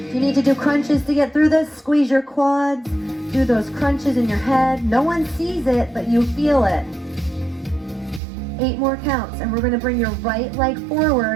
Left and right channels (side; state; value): left; drops out; at 8.2 s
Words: If you need to do crunches to get through this, squeeze your quads, do those crunches in your head. No one sees it, but you feel it. 8 more counts, and we're gonna bring your right leg